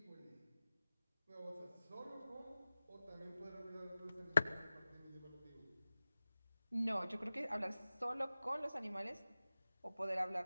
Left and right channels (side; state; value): both; inverted; correlation -0.96